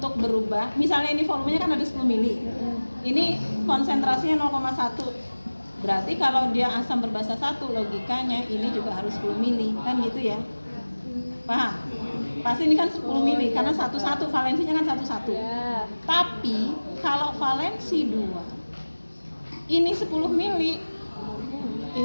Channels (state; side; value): inverted; both; correlation -1.00